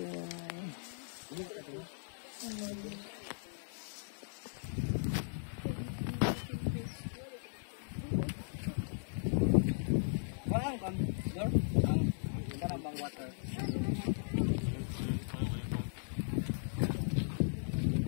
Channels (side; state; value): right; silent; 53 dB below the other